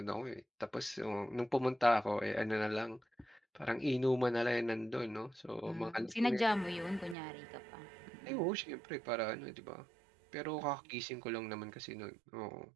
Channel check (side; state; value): left; drops out; at 7.2 s